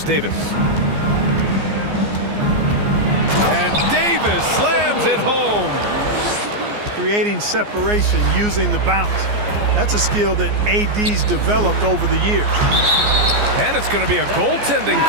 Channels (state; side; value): late; left; 14 ms